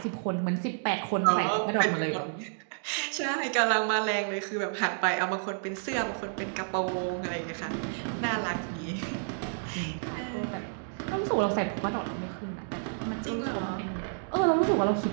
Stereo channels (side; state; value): left; silent; digital silence